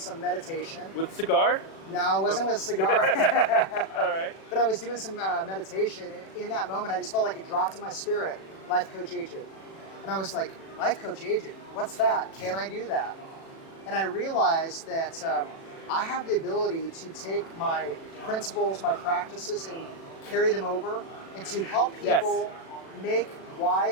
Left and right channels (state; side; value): late; right; 36 ms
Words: meditation. With a cigar? No, it wasn't with a cigar. All right. But I was doing some meditation, and in that moment, I just felt like it dropped in my spirit, Life Coach Agent. And I was like, Life Coach Agent, what's that? Can I do that? And I realized that I have the ability to take my principles, my practices, and carry them over, and to help people make